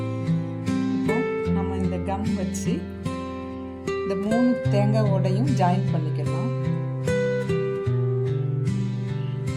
இப்போ நம்ம இந்த கம் வச்சு இந்த 3 தேங்காய் ஓடையும் ஜாயின் பண்ணிக்கலாம்.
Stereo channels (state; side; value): identical; both; correlation 1.00